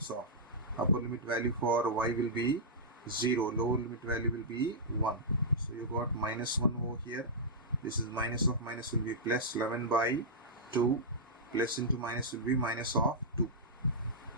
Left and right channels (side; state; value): both; normal; correlation -0.12